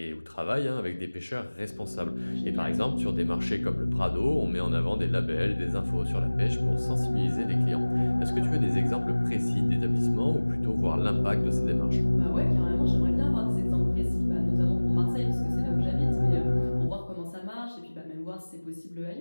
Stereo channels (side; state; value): both; inverted; correlation -1.00